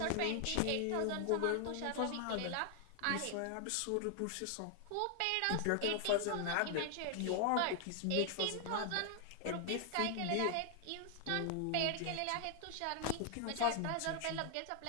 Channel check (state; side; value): different; both; correlation 0.00